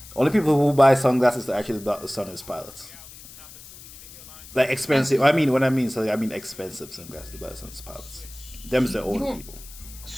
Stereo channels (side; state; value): left; noise; hiss, 18 dB below the sound